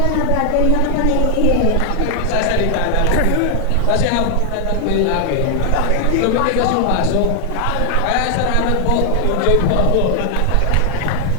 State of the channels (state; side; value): different; both; correlation 0.00